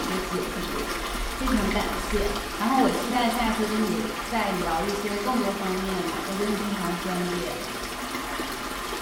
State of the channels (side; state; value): both; identical; correlation 1.00